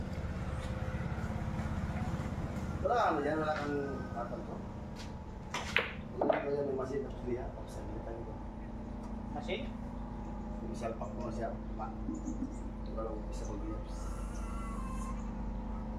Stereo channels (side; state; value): both; identical; correlation 1.00